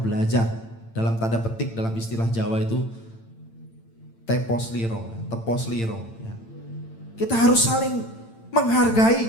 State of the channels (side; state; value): right; late; 8.9 ms